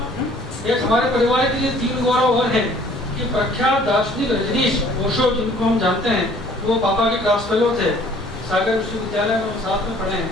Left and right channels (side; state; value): both; normal; correlation 0.55